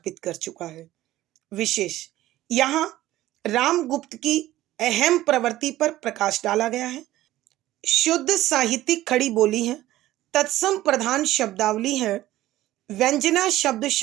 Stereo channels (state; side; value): quieter; left; 15.3 dB